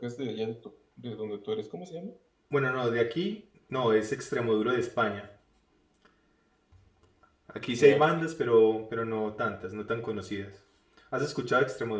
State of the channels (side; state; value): both; identical; correlation 1.00